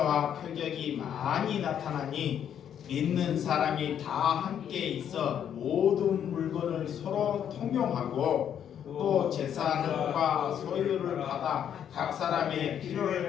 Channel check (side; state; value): right; quieter; 9.2 dB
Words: 표적이 많이 나타나니 믿는 사람이 다 함께 있어 모든 물건을 서로 통용하고 또 재산과 소유를 받아 각 사람의